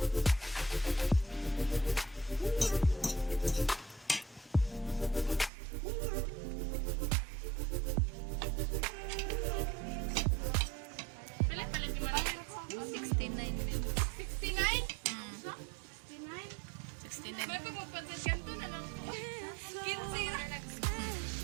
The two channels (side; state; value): left; drops out; at 5.5 s